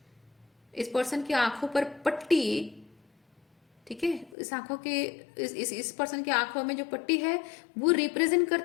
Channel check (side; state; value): right; drops out; at 4.4 s